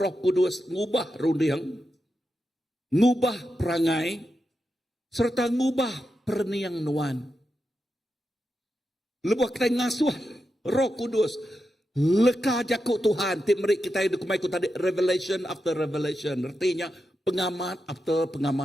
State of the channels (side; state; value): both; normal; correlation 0.88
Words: Kudus ngubah rundiang. Ngubah perangai. Serta ngubah perniang nuan. Lebuh kita ngasuh Roh Kudus. Leka jakuk Tuhan. Tip merik kita hidup kumai tadi. Revelation after revelation. Artinya pengamat after